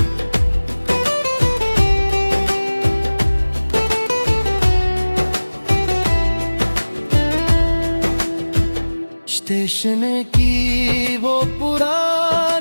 स्टेशन की वो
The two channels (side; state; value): both; inverted; correlation -1.00